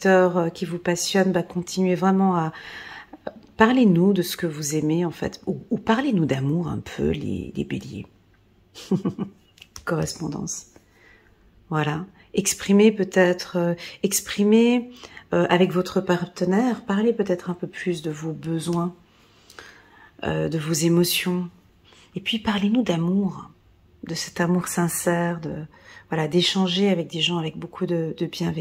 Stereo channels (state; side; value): identical; both; correlation 1.00